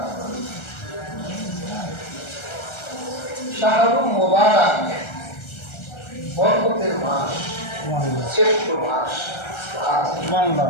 শাহরুল মুবারক, বরকতের মাস, শ্রেষ্ঠ মাস।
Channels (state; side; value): late; right; 1.3 ms